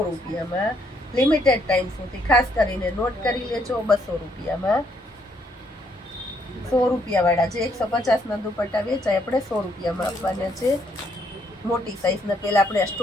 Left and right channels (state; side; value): normal; both; correlation 0.71